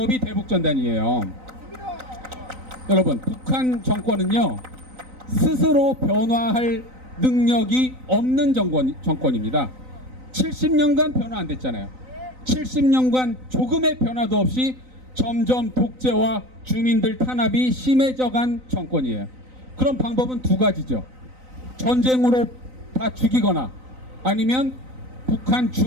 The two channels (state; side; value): late; left; 3.9 ms